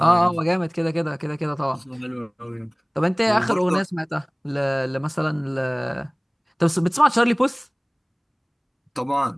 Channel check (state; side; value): identical; both; correlation 1.00